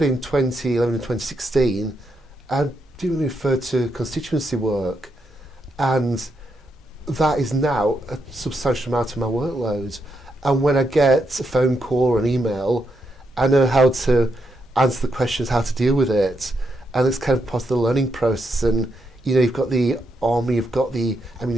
in 2011 and 2016, I didn't really refer to constituency work, and that is now a substantial amount of my workload. And when I get a phone call or an email, I know how to answer the questions, how to deal with it, and it's kind of part of the learning process. And you know, you've got the army, you've got the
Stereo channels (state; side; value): normal; both; correlation 0.81